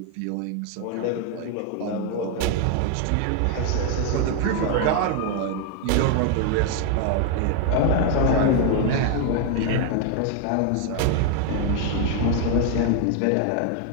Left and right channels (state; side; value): different; both; correlation 0.01